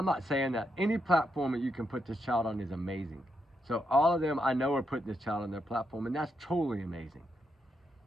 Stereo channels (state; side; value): normal; both; correlation 0.82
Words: not saying that any platform that you can put this child on is amazing. So all of them, I know, are putting this child on their platform, and that's totally amazing.